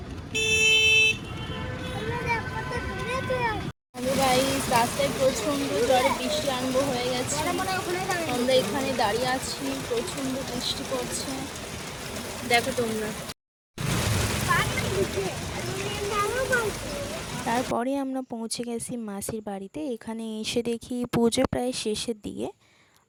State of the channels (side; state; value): both; identical; correlation 1.00